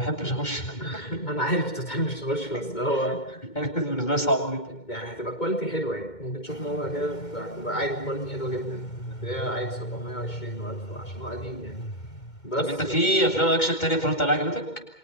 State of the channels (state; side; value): late; right; 2.2 ms